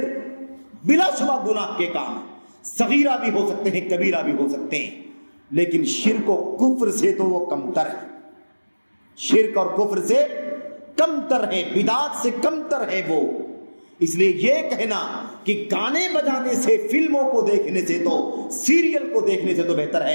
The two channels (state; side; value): inverted; both; correlation -1.00